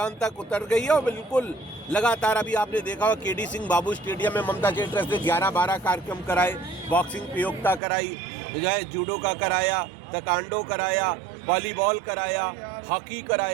तक उतर गई है और बिल्कुल लगातार। अभी आपने देखा होगा केडी सिंह बाबू स्टेडियम में ममता चैरिटी ट्रस्ट ने 11-12 कार्यक्रम कराए, बॉक्सिंग प्रतियोगिता कराई, जो है जूडो का कराया, ताइक्वांडो कराया, वॉलीबॉल कराया, हॉकी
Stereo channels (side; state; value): left; drops out; at 7.8 s